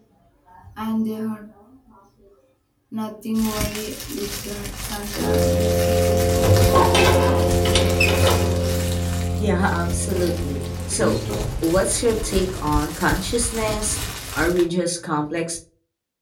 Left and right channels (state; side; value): identical; both; correlation 1.00